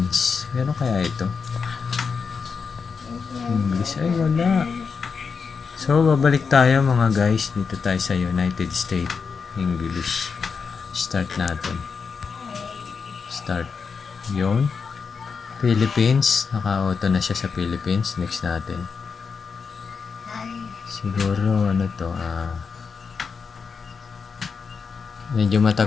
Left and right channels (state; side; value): quieter; right; 5.5 dB